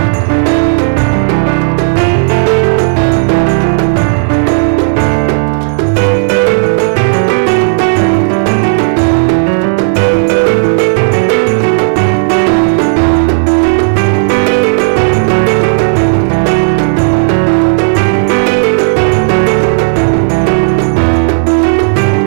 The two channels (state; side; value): silent; left; digital silence